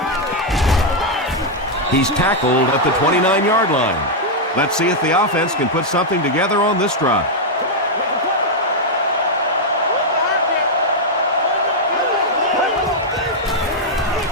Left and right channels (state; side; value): normal; both; correlation -0.02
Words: He's tackled at the 29-yard line. Let's see if the offense can put something together on this drive.